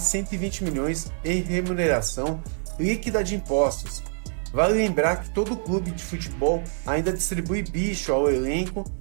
120 milhões em remuneração líquida de impostos. Vale lembrar que todo clube de futebol ainda distribui bicho ao elenco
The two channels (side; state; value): left; silent; digital silence